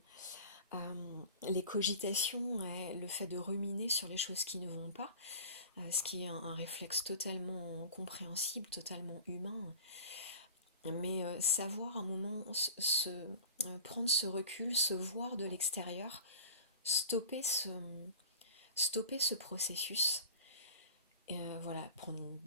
les cogitations, le fait de ruminer sur les choses qui ne vont pas, ce qui est un réflexe totalement compréhensible, totalement humain, mais savoir un moment prendre ce recul, se voir de l'extérieur, stopper ce processus, et voilà, prendre une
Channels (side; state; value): both; inverted; correlation -0.39